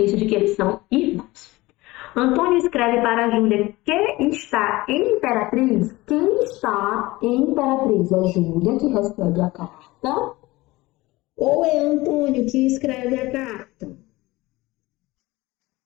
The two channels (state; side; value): quieter; right; 20.1 dB